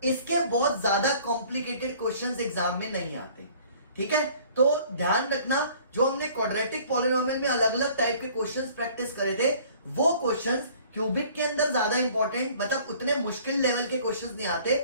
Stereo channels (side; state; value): both; inverted; correlation -0.53